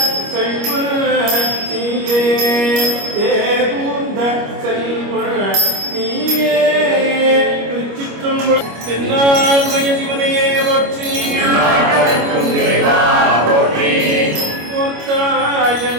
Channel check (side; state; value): left; late; 25 ms